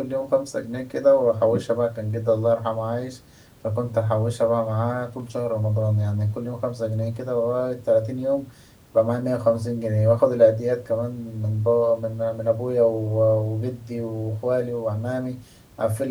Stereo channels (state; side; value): identical; both; correlation 1.00